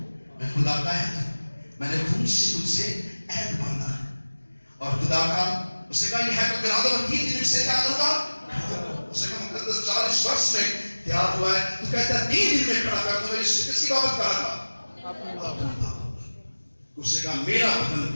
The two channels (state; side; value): inverted; both; correlation -1.00